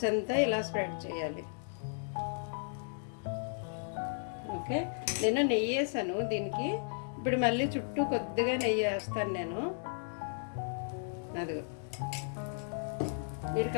అంతా ఇలా స్ప్రెడ్ చేయాలి. ఓకే, నేను నెయ్యి వేసాను దీనికి. ఇప్పుడు మళ్ళీ చుట్టూ కొద్దిగా నెయ్యి వేస్తాను నేను. అదిగో, మీరు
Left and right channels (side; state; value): right; silent; digital silence